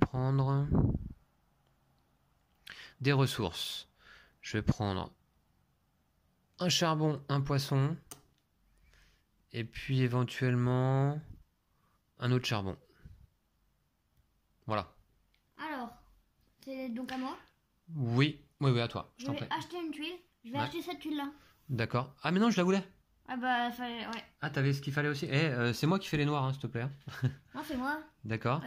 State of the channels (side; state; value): both; identical; correlation 1.00